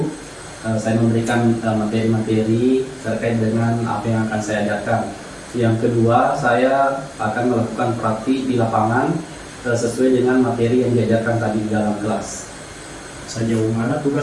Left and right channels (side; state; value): both; identical; correlation 1.00